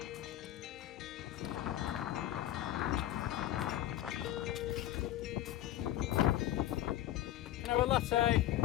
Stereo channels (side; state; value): right; quieter; 13.3 dB